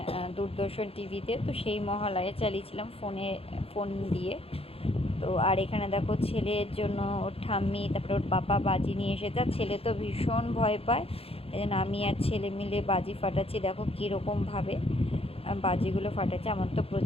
দূরদর্শন টিভিতে, তো সেই মহালয়া চালিয়েছিলাম ফোন দিয়ে। তো আর এখানে দেখো ছেলের জন্য ওর ঠাম্মি, তারপরে ওর পাপা বাজি নিয়ে এসেছে। আর ছেলে তো ভীষণ ভয় পায়, এই জন্য আমি আর ছেলে মিলে বাজি ফাটাচ্ছি। দেখো কীরকমভাবে বাজিগুলো ফাটাচ্ছে, আমার তো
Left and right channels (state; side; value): late; right; 0.28 ms